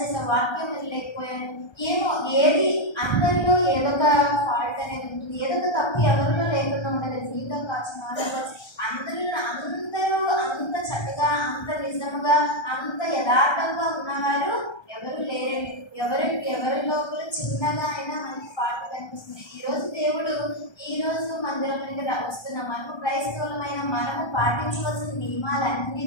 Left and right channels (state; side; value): late; right; 1.3 ms